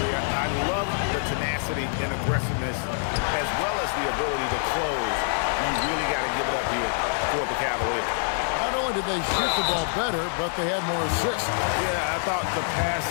I love the tenacity and aggressiveness as well as the ability to close. You really got to give it up here for the Cavaliers. Not only did they shoot the ball better, but they had more assists. Yeah, I thought the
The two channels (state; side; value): silent; right; digital silence